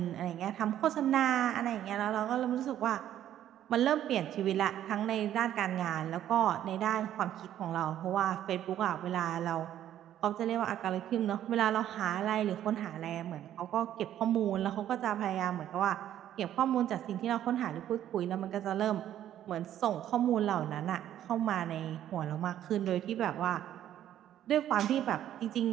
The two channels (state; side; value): quieter; left; 11.4 dB